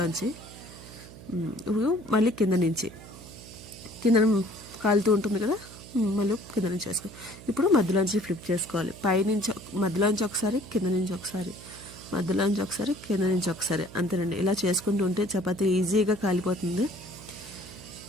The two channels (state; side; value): noise; right; hum, 17 dB below the sound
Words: ఇప్పుడు మళ్ళీ కింద నుంచి కాలుతూ ఉంటుంది కదా, మళ్ళీ కింద నుంచి వేసుకో. ఇప్పుడు మధ్యలోంచి ఫ్లిప్ చేసుకోవాలి. పైనుంచి మధ్యలోంచి ఒకసారి, కింద నుంచి ఒకసారి, మధ్యలోంచి ఒకసారి, కింద నుంచి ఒకసారి. అంతేనండి. ఇలా చేసుకుంటూ ఉంటే చపాతీ ఈజీగా కాలిపోతుంది.